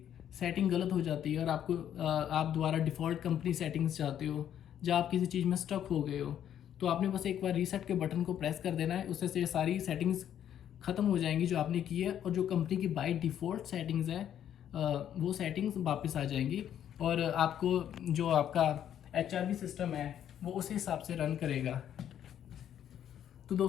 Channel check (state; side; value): quieter; right; 10.1 dB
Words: सेटिंग गलत हो जाती है और आप दोबारा डिफ़ॉल्ट कंपनी सेटिंग्स चाहते हो, जहाँ आप किसी चीज़ में स्टक हो गए हो, तो आपने बस एक बार रीसेट के बटन को प्रेस कर देना है। उससे से सारी सेटिंग्स ख़त्म हो जाएंगी जो आपने की है, और जो कंपनी की बाय डिफ़ॉल्ट सेटिंग्स है वो सेटिंग्स वापस आ जाएंगी, और आपको जो आपका HRV सिस्टम है वो उस हिसाब से रन करेगा। तो